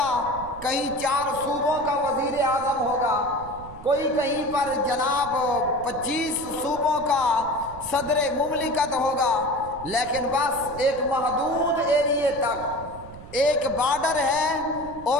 کہیں 4 صوبوں کا وزیر اعظم ہوگا، کوئی کہیں پر جناب 25 صوبوں کا صدر مملکت ہوگا، لیکن بس ایک محدود ایریے تک ایک بارڈر ہے،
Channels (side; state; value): right; noise; rumble, 16 dB below the sound